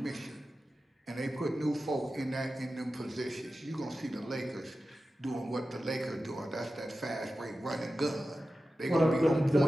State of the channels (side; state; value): both; normal; correlation 0.94